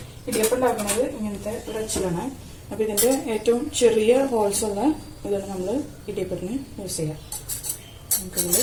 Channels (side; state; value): both; identical; correlation 1.00